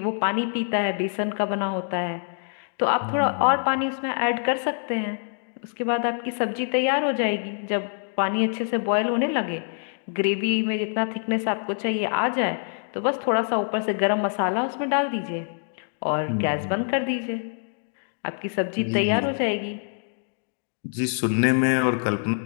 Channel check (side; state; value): right; silent; digital silence